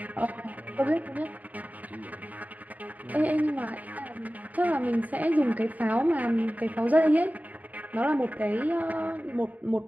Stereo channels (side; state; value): left; late; 0.076 ms